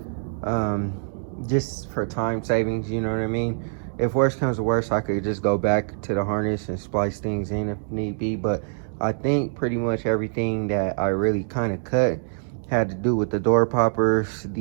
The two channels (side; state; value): left; silent; digital silence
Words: just for time savings, you know what I mean? If worse comes to worse, I could just go back to the harness and splice things in if need be. But I think pretty much everything that I really kind of cut had to do with the door poppers,